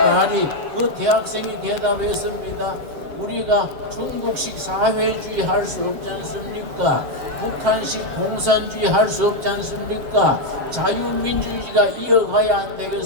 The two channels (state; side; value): late; left; 7.6 ms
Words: 말이 그 대학생이 대답했습니다. 우리가 중국식 사회주의 할 수 없지 않습니까? 북한식 공산주의 할 수 없지 않습니까? 자유민주주의가 이어가야 안